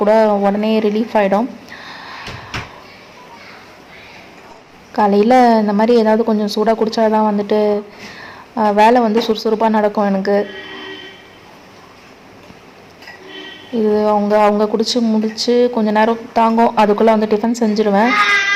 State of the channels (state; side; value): identical; both; correlation 1.00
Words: கூட உடனே ரிலீஃப் ஆகிடும். காலையில் இந்த மாதிரி ஏதாவது கொஞ்சம் சூடாக குடித்தா தான் வந்துட்டு வேலை வந்து சுறுசுறுப்பாக நடக்கும் எனக்கு. இது அவங்க குடிச்சு முடிச்சு கொஞ்சம் நேரம் தாங்கும், அதுக்குள்ளே வந்து டிஃபன் செஞ்சுருவேன்.